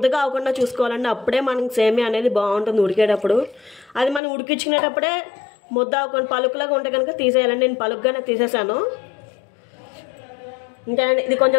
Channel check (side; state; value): right; drops out; at 4.2 s